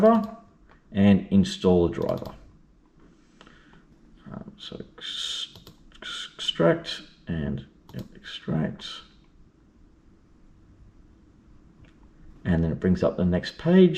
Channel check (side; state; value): both; identical; correlation 1.00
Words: and install the driver. So extract and extract. And then it brings up the next